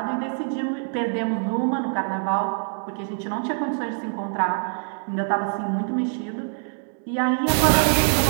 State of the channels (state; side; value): silent; left; 58 dB below the other